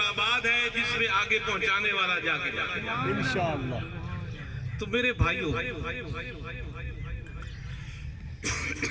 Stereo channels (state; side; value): identical; both; correlation 1.00